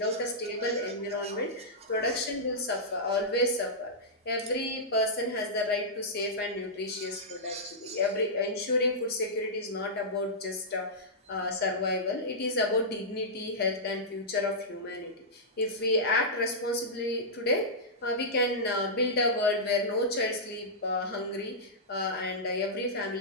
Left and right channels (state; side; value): normal; both; correlation -0.12